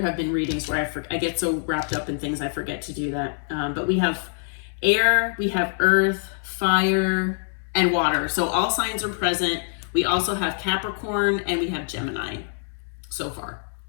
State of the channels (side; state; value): right; silent; digital silence